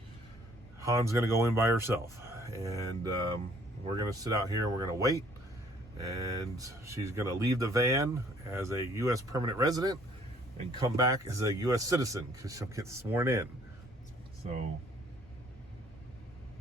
Han's gonna go in by herself, and we're gonna sit out here and we're gonna wait, and she's gonna leave the van as a U.S. permanent resident and come back as a U.S. citizen, because she'll get sworn in. So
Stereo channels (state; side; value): normal; both; correlation 0.60